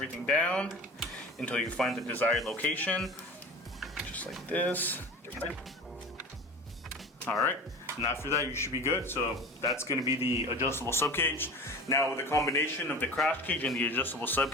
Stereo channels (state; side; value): normal; both; correlation 0.36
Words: down until you find the desired location, just like this. All right, and after that you should be good. So that's going to be the adjustable subcage. Now with the combination of the crash cage and the adjustable